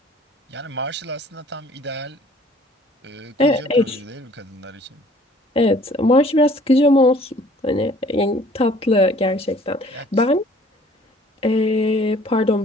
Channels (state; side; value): normal; both; correlation 0.55